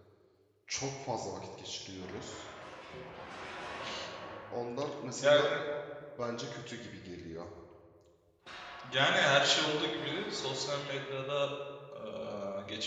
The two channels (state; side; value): identical; both; correlation 1.00